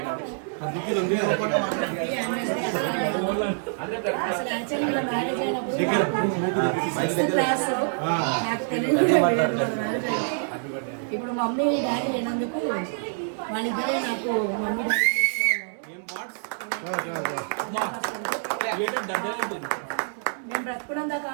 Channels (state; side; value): silent; left; digital silence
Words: ఇప్పుడు మమ్మీ డాడీ లేనందుకు వాళ్ళిద్దరే నాకు మమ్మీ డాడీ నేను బ్రతుకున్నంత